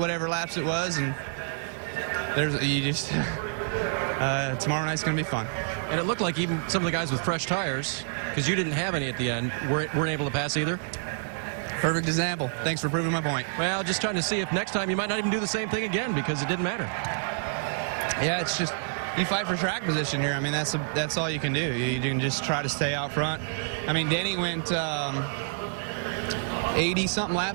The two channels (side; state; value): left; silent; digital silence